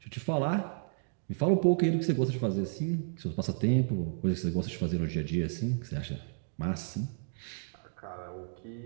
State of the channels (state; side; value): silent; left; digital silence